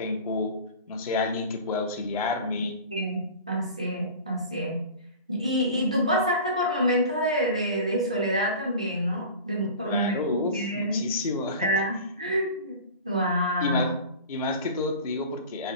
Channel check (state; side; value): inverted; both; correlation -0.36